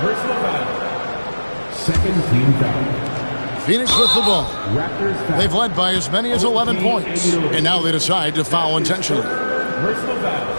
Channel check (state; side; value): inverted; both; correlation -1.00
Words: foul. Second team foul. Phoenix with the ball. Raptors foul. They've led by as many as 11 points. And now they decide to foul intentionally. Personal foul.